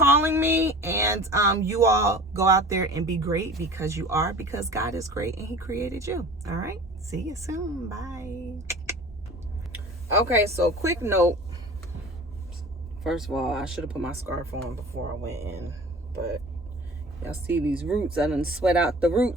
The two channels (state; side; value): normal; both; correlation 0.41